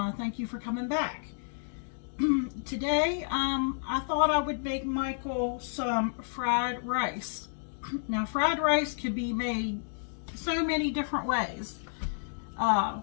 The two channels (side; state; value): right; silent; digital silence